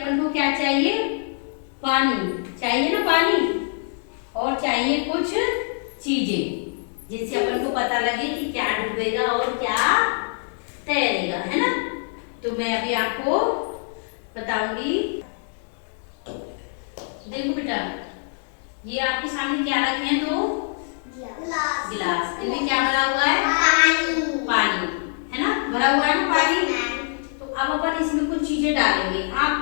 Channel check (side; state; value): right; silent; 59 dB below the other